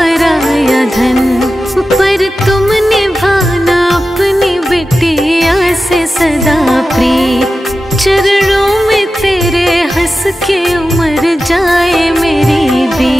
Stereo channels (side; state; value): both; normal; correlation 0.93